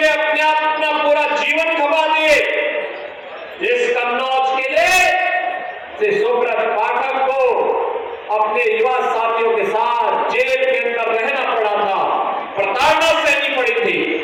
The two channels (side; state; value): both; identical; correlation 1.00